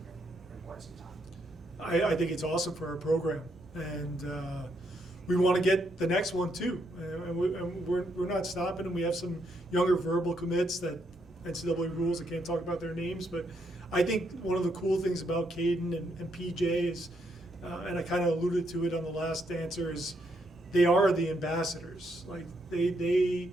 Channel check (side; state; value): both; normal; correlation 0.76